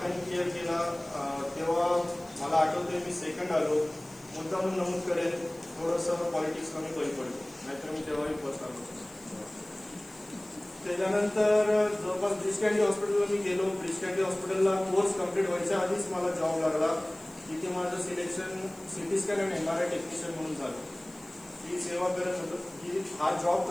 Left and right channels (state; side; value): noise; left; hiss, 24 dB below the sound